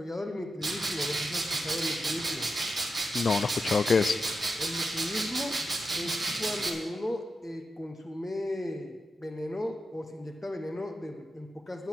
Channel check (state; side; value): normal; both; correlation 0.88